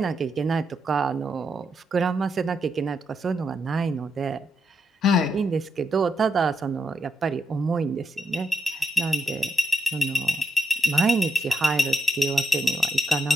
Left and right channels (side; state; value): both; normal; correlation 0.82